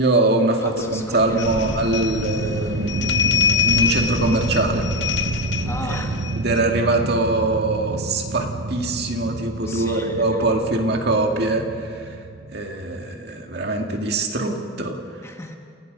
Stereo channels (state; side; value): normal; both; correlation 0.14